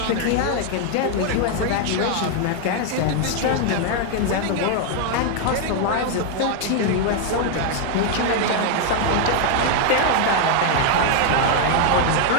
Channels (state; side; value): different; both; correlation 0.00